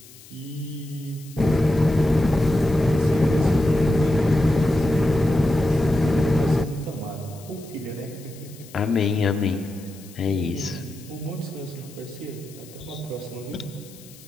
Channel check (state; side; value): noise; left; hiss, 21 dB below the sound